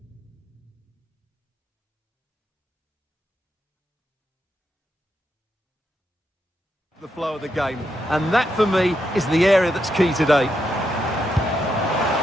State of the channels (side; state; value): both; normal; correlation 0.82